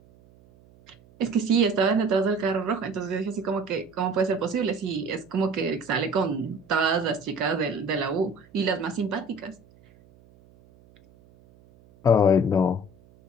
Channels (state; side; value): noise; right; hum, 27 dB below the sound